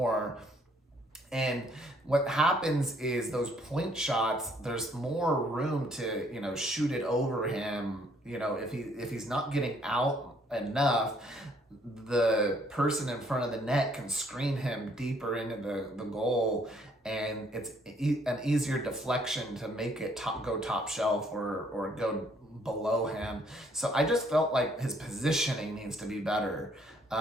And what happens is those point shots, there's more room to, shoot it over him. If he's not getting out enough, the person in front of the net can screen him deeper into the goal, and it's an easier deflection to make it go top shelf or go below him. So I just felt like his positioning needs to be better.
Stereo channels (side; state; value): both; normal; correlation 0.65